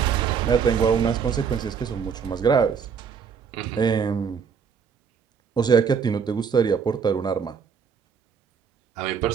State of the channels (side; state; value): left; quieter; 6.5 dB